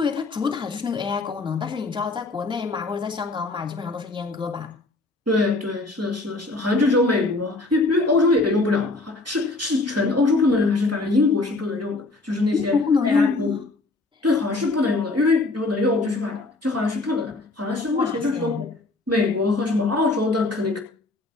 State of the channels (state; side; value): quieter; right; 3.2 dB